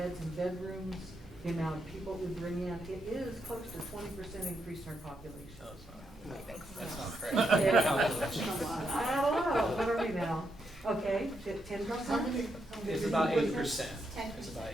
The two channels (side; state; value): both; normal; correlation 0.81